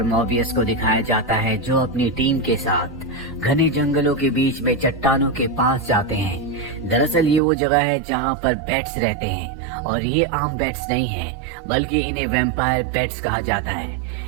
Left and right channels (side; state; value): left; drops out; at 7.4 s